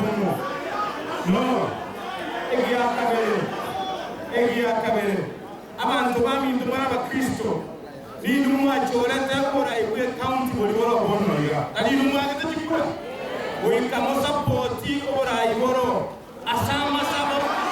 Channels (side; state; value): both; identical; correlation 1.00